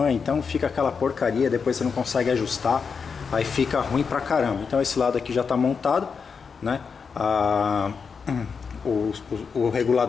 então fica aquela porcaria, depois você não consegue ajustar, aí fica ruim pra caramba. Então esse lado aqui já está montado, né? O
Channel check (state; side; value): quieter; right; 5.7 dB